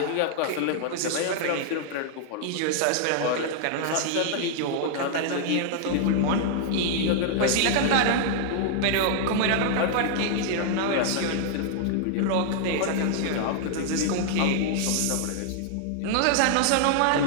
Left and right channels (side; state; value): both; different; correlation 0.00